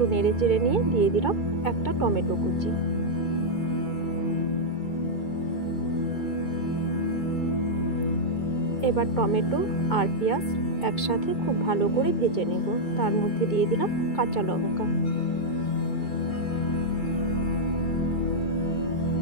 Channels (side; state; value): right; late; 2.2 ms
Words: নেড়ে চেড়ে নিয়ে দিয়ে দিলাম একটা টমেটো কুচি। এবার টমেটো আর পেঁয়াজ একসাথে খুব ভালো করে ভেজে নেব। তার মধ্যে দিয়ে দিলাম কাঁচা লঙ্কা।